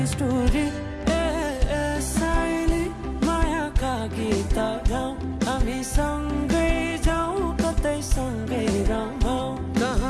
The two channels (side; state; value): both; identical; correlation 1.00